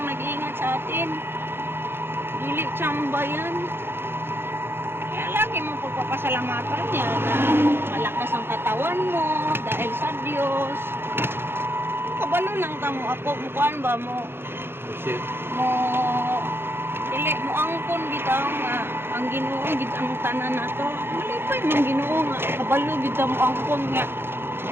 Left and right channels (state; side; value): late; left; 0.11 ms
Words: nag-iingat sa atin. Dili tsamba yan. Kaya lagi mo pagpapasalamatan niya na malakas ang katawan mo dahil sa Diyos. Kabalo lang ka mo ako, mukuan ba mo? Mo, dili mo angkon bitaw nga ang Ginoo gid ang tanan nato. Malipay man Ginoo nga kabalo gid mo angkon nga